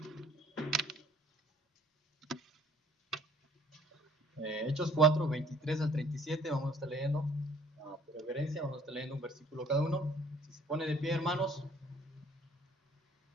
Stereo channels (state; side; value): normal; both; correlation 0.57